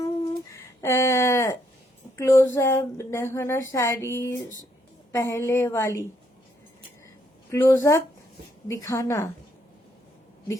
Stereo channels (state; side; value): normal; both; correlation 0.73